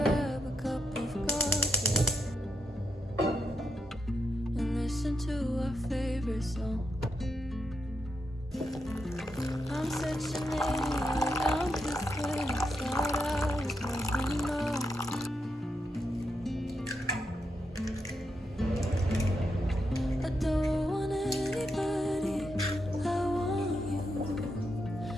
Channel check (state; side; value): normal; both; correlation 0.83